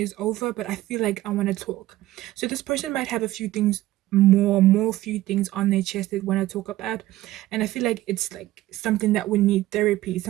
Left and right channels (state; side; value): quieter; left; 15.9 dB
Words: over, but I feel like I want to talk. So this person might have a few things, more few things on their chest they want to talk about, and I feel like it's like something that would need therapy,